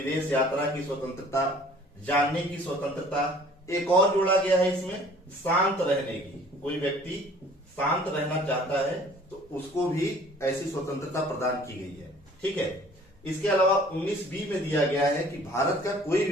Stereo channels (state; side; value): normal; both; correlation 0.52